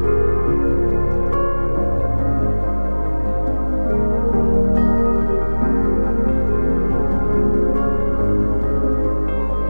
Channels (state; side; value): inverted; both; correlation -1.00